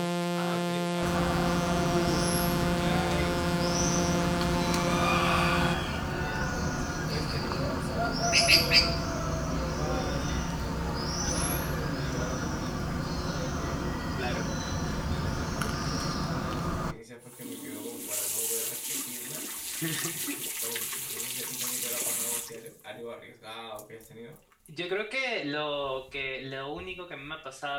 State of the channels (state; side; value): identical; both; correlation 1.00